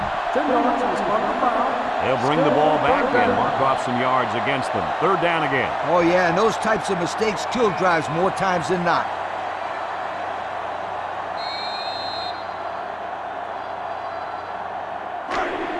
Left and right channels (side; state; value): both; identical; correlation 1.00